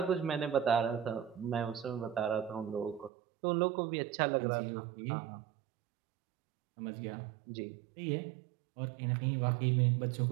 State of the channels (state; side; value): drops out; left; at 3.1 s